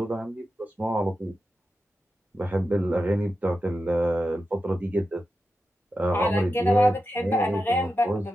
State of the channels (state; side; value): normal; both; correlation 0.90